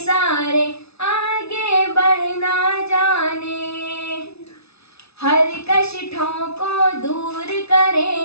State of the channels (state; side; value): late; right; 0.79 ms